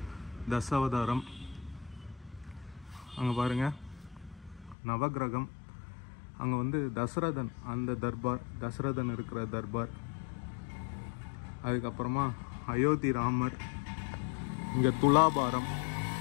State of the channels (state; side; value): drops out; right; at 4.8 s